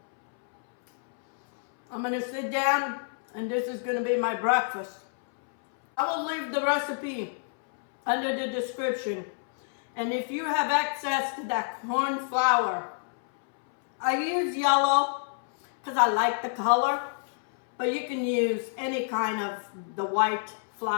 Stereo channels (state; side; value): silent; right; 60 dB below the other